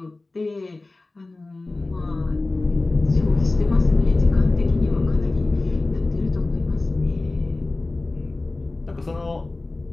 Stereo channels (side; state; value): right; quieter; 3.2 dB